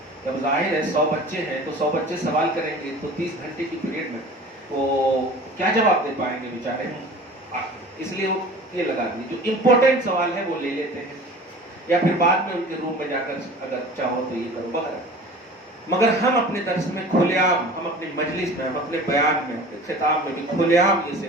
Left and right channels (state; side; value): normal; both; correlation 0.41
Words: جب ظاہر ہے 100 بچے ہیں تو 100 بچے سوال کریں گے تو 30 گھنٹے کی پیریڈ میں وہ کیا جواب دے پائیں گے بیچارے. اس لیے وہ یہ لگا دیے جو امپورٹنٹ سوال ہے وہ لے لیتے ہیں، یا پھر بعد میں ان کے روم میں جا کر اگر چاہو تو یہ کرو وغیرہ. مگر ہم اپنے درس میں کھلے عام، ہم اپنی مجلس میں، ہم اپنے بیان میں، اپنے خطاب میں بھی کھلے عام